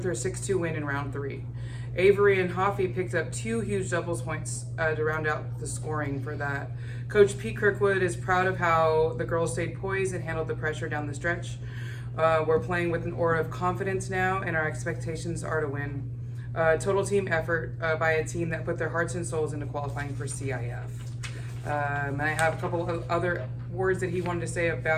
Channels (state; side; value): identical; both; correlation 1.00